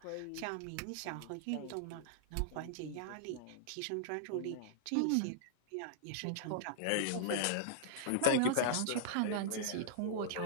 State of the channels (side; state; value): both; different; correlation -0.01